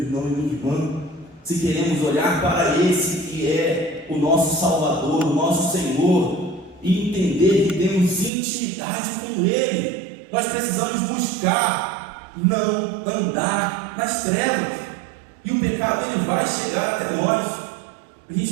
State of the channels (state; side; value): drops out; left; at 8.3 s